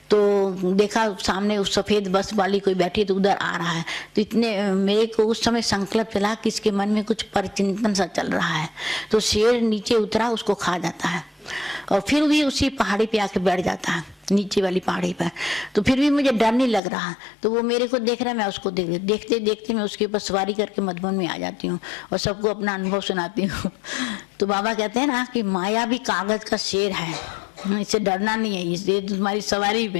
तो देखा सामने उस सफेद बस वाली कोई बैठी, तो उधर आ रहा है। तो इतने मेरे को उस समय संकल्प चला कि इसके मन में कुछ परचिंतन सा चल रहा है। तो शेर नीचे उतरा, उसको खा जाता है और फिर भी उसी पहाड़ी पे आके बैठ जाता है, नीचे वाली पहाड़ी पर। तो फिर भी मुझे डर नहीं लग रहा। तो वो मेरे को देख रहा है, मैं उसको देख रही। देखते देखते मैं उसके ऊपर सवारी करके मधुबन में आ जाती हूँ और सबको अपना अनुभव सुनाती हूँ। तो बाबा कहते हैं ना कि माया भी कागज का शेर है, इससे डरना नहीं है, इससे तुम्हारी सवारी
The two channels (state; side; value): drops out; right; at 16.8 s